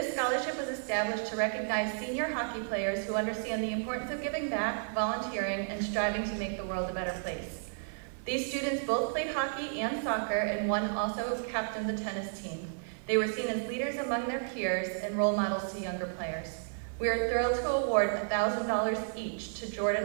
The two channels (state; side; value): silent; left; 56 dB below the other